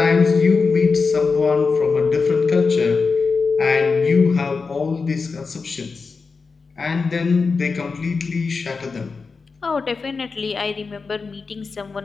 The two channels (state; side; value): quieter; right; 4.6 dB